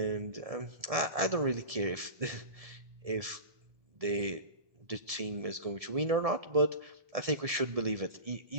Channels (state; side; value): late; left; 1.7 ms